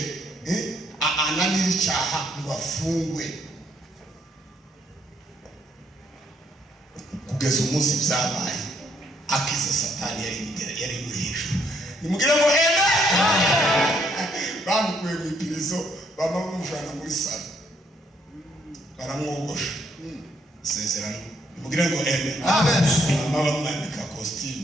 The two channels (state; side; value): normal; both; correlation 0.71